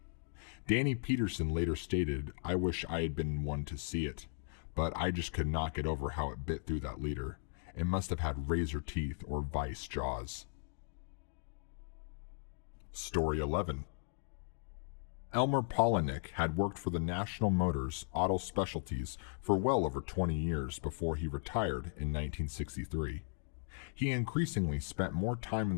Danny Peterson later stated, "I wish I had been one to see it, but I just could not get over how it bit through that leader. It must have had razor teeth or vice jaws." Story 11. Elmer Polinick had worked for the National Motors Auto Specialties for well over 20 years before he retired in 1963. He increasingly spent more time in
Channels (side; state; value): right; silent; digital silence